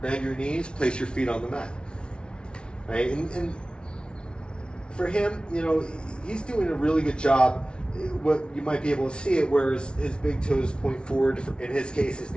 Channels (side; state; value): right; late; 0.056 ms